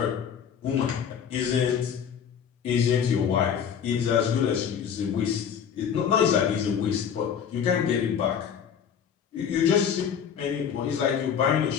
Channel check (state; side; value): quieter; right; 7.9 dB